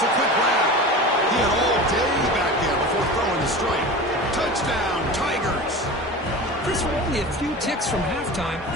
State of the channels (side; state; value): both; normal; correlation 0.32